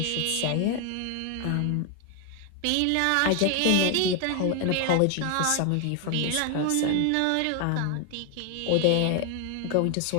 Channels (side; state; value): both; different; correlation 0.01